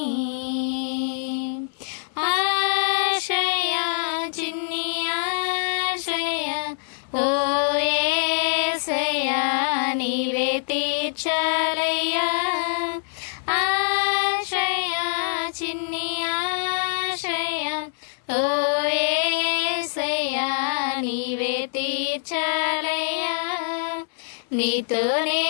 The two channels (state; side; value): silent; right; 62 dB below the other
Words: ఆశయా చిన్ని ఆశయా ఓ యేసయ్యా నీవే తీర్చాలయ్యా, ఆశయా చిన్ని ఆశయా ఓ యేసయ్యా నీవే తీర్చాలయ్యా, నీతో